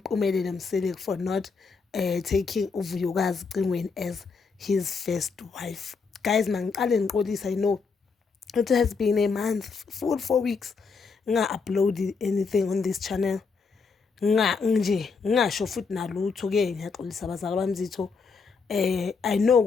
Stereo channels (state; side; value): quieter; right; 5.0 dB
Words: Msele for not taking uVuyokazi Cingweni as his first wife. Guys, mangiqale ngiqolisa, I know it has been a month, full 4 weeks nga-upload anything on this channel. Ngingasho futhi nalutho ke ngiyaxolisa abazali bamzitho. I know